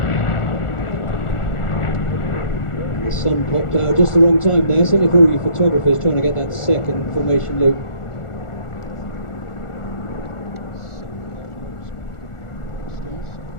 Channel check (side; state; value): right; late; 1.4 ms